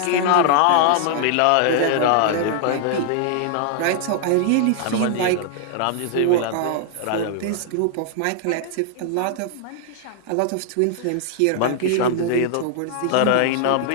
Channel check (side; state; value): both; different; correlation 0.00